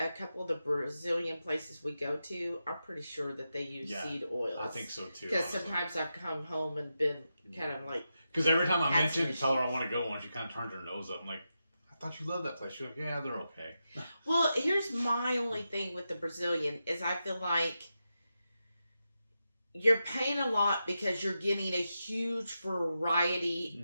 couple of the Brazilian places we go to, I'm pretty sure that they use seed oils. I think so too. Because sometimes I've come home and been kind of like. Because every time I mention and tell her I want to go one, she kind of turns her nose up. I'm like, I thought you loved that place. She's like, yeah, they're okay. Well, here's my only thing with the Brazilian is I feel like you're paying a lot because you're getting a huge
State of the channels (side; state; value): both; inverted; correlation -0.88